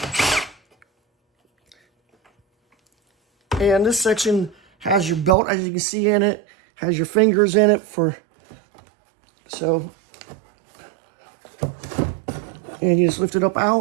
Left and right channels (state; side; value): drops out; left; at 5.4 s